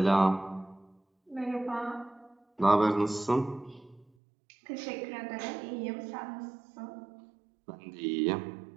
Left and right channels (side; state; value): left; drops out; at 4.0 s